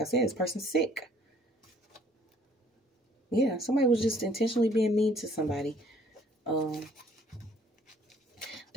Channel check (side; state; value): both; normal; correlation 0.59